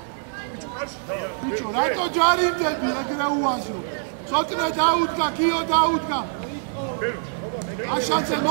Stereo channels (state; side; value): silent; left; digital silence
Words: ბიჭო, რატო ჯარიმდები ეგრე უაზრო? ცოტნე დაუდგა, გიო დაუდგა. აშანცე,